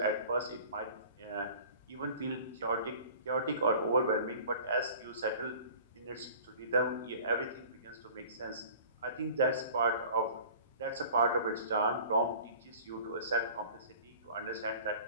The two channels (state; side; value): inverted; both; correlation -0.45